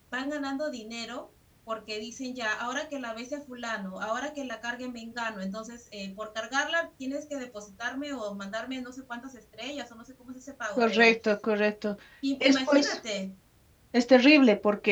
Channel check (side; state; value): both; identical; correlation 1.00